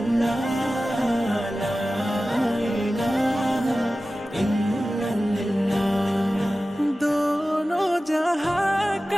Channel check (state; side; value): normal; both; correlation 0.95